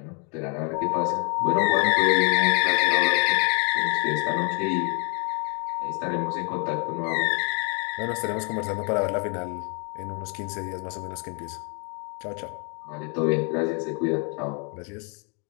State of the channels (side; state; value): right; quieter; 36.1 dB